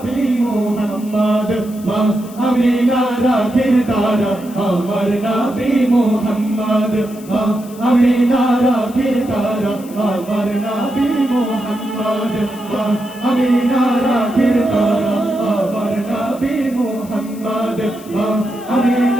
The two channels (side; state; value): left; noise; hiss, 21 dB below the sound